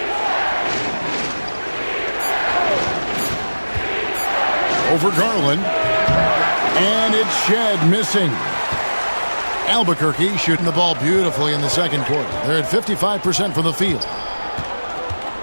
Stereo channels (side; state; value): both; inverted; correlation -1.00